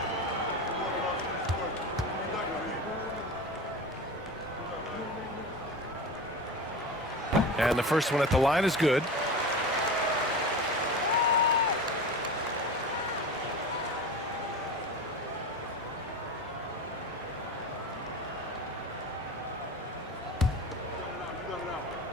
And the first one at the line is good.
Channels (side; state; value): both; normal; correlation 0.29